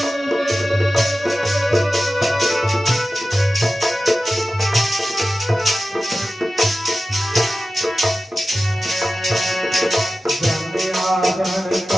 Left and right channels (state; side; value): normal; both; correlation 0.94